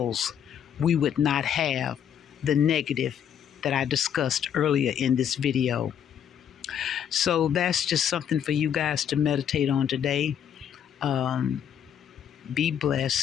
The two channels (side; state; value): right; quieter; 9.0 dB